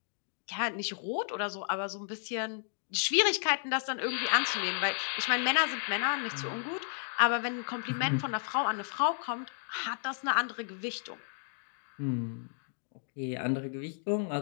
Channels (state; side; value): silent; right; digital silence